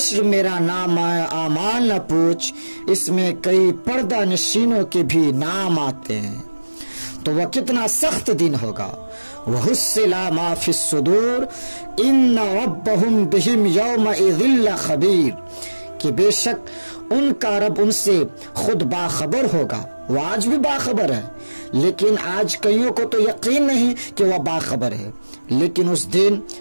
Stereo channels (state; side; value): inverted; both; correlation -1.00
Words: मेरा नाम आमाल न पूछ, इसमें कई पर्दा नशीनों के भी नाम आते हैं। तो वह कितना सख्त दिन होगा। वह हुस्सिला मा फिस सुदूर इन्न रब्बहुम बिहिम यौमइज़िल खबीर, कि बेशक उनका रब उनसे खुद बाखबर होगा। वह आज भी बाखबर है, लेकिन आज कईयों को तो यकीन नहीं कि वह बाखबर है। लेकिन उस दिन